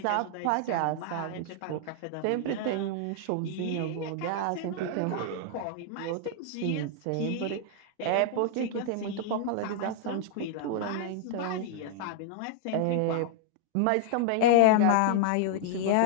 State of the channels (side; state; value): both; different; correlation 0.00